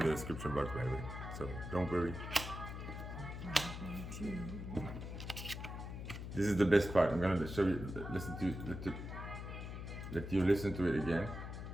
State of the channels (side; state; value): left; noise; hum, 7 dB below the sound